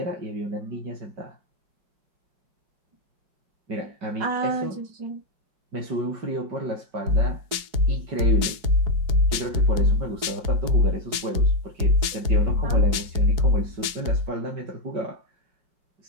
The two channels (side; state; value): left; late; 4.8 ms